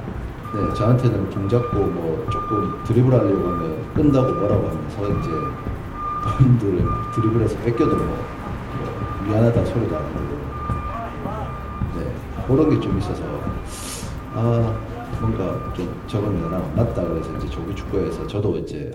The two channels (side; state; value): both; identical; correlation 1.00